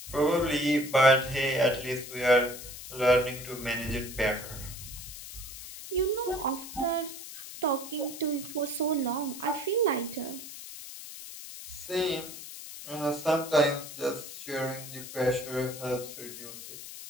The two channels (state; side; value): noise; left; hiss, 12 dB below the sound